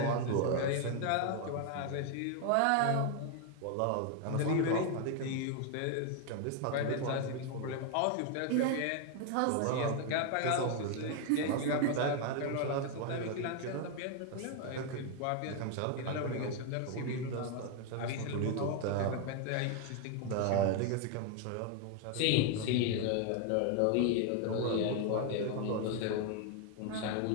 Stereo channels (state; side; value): different; both; correlation 0.01